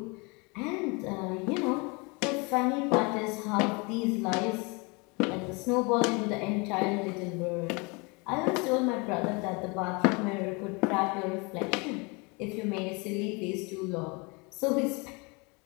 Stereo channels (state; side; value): quieter; right; 29.3 dB